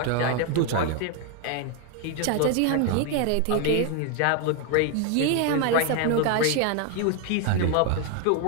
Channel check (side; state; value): both; different; correlation 0.01